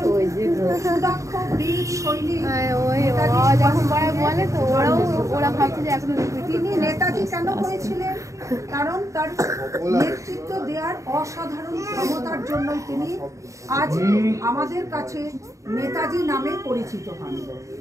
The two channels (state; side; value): late; left; 0.15 ms